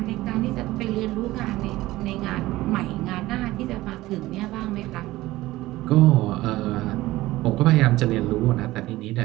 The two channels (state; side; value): quieter; left; 17.6 dB